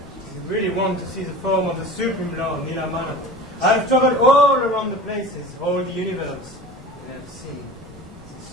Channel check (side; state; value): both; normal; correlation 0.36